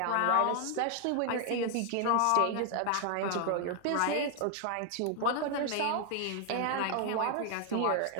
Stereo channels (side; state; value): both; different; correlation 0.00